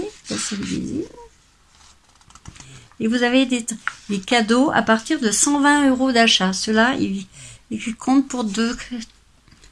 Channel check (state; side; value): identical; both; correlation 1.00